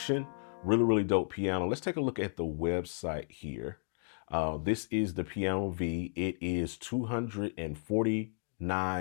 Really, really dope piano. Let's take a look at the website here. This is the Piano V. It is $249. So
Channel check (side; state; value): right; silent; digital silence